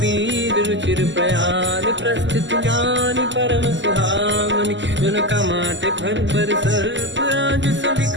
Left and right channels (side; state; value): left; late; 0.54 ms